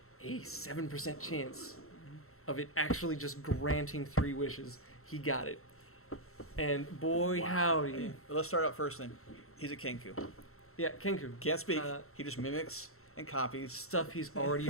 a 7% chance of it actually just granting 3 wishes. He got it. And boy, howdy. Well, let's start out first then. He's a Kenku. Yeah, Kenku. Can't speak. He just mimics and copies. Stuff he's already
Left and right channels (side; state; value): right; late; 0.63 ms